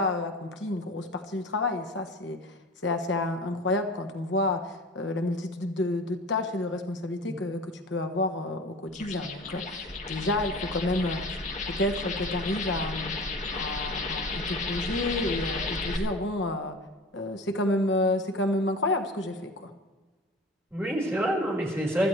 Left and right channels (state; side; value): normal; both; correlation 0.38